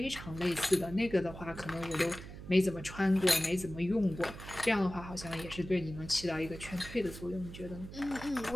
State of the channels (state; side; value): noise; right; hum, 12 dB below the sound